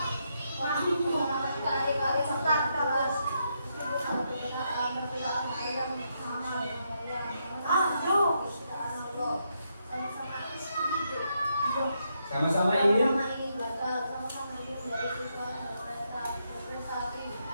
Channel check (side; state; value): both; inverted; correlation -0.80